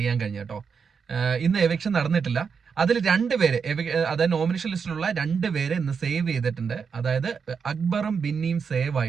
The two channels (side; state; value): left; quieter; 6.0 dB